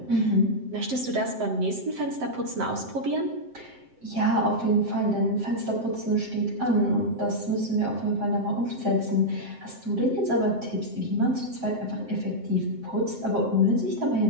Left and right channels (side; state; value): left; late; 7.7 ms